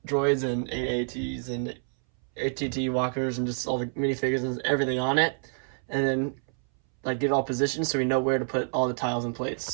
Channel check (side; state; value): left; silent; 60 dB below the other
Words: droids and AATs and ATT walkers and just all the minifigures and everything on it. And then get it all positioned so we know where to put all the tiles and plates.